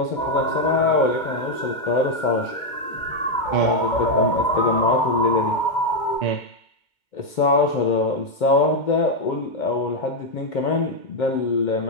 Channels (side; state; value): right; late; 2.2 ms